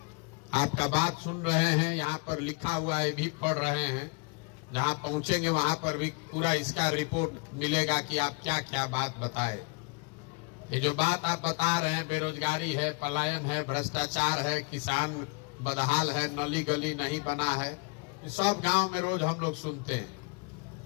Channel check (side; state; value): right; quieter; 31.4 dB